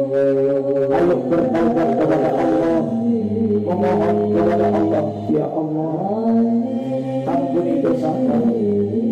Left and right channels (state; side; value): identical; both; correlation 1.00